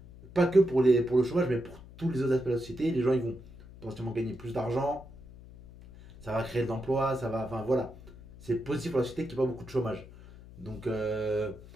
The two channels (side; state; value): left; noise; hum, 19 dB below the sound